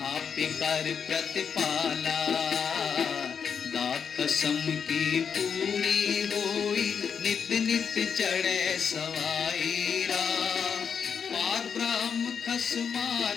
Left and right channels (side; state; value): right; quieter; 6.8 dB